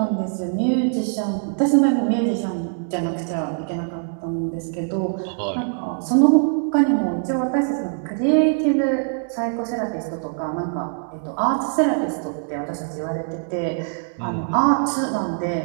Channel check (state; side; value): silent; left; digital silence